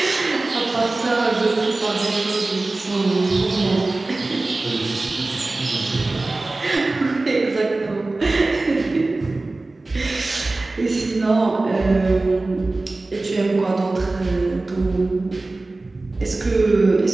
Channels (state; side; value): quieter; left; 3.1 dB